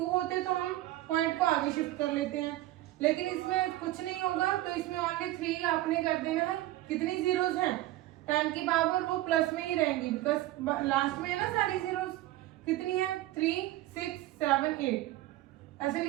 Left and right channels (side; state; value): left; quieter; 16.0 dB